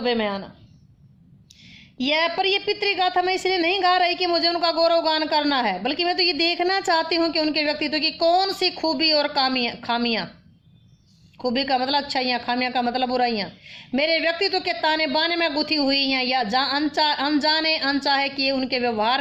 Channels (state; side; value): identical; both; correlation 1.00